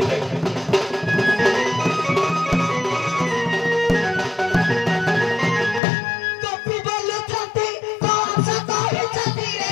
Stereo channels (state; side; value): drops out; right; at 5.8 s